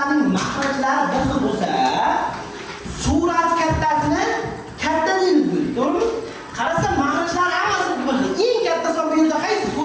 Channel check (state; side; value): identical; both; correlation 1.00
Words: mahrajlari bir xil bo'lsa, surat kattasini katta deymiz, to'g'rimi? Qarasa mahrajlari hammasi bir xil. Eng katta son bu yerda qaysi